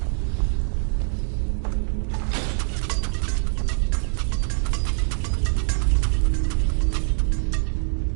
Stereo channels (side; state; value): left; silent; digital silence